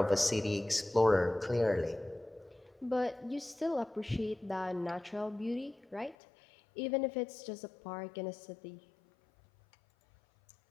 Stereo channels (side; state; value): right; drops out; at 6.2 s